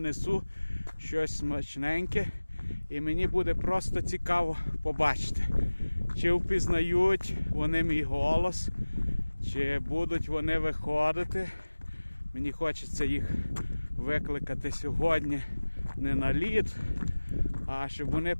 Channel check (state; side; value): inverted; both; correlation -1.00